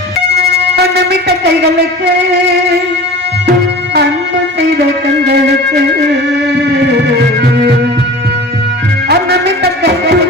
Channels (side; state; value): both; normal; correlation 0.38